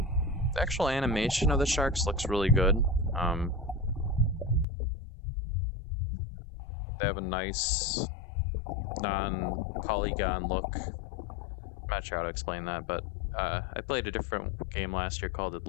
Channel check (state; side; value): drops out; right; at 4.7 s